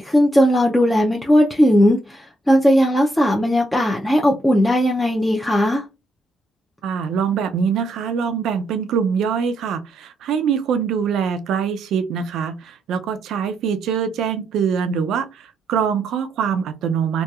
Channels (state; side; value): normal; both; correlation 0.79